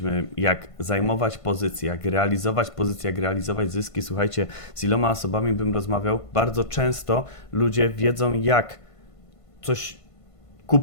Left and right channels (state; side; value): late; right; 1.5 ms